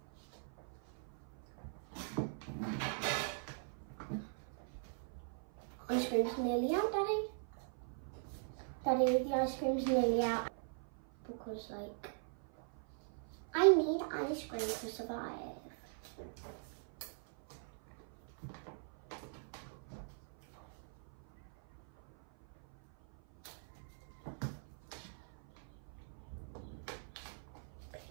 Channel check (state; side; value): silent; left; 50 dB below the other